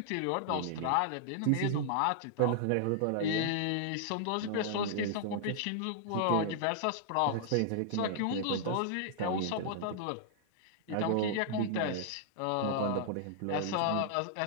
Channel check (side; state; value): both; different; correlation -0.01